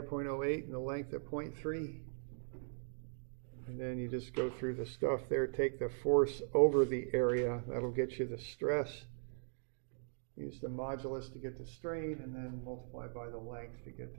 0.08 and the length at 0.3. And then you just go through the stuff there, take the force over the area, that'll get you the stress. Use the modulus to get the strain, and then multiply by the length to get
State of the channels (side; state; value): left; silent; digital silence